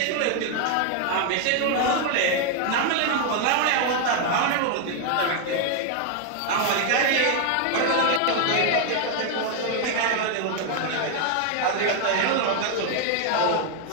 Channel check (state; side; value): different; both; correlation 0.00